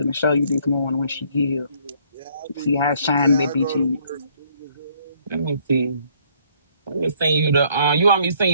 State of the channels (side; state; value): both; inverted; correlation -0.65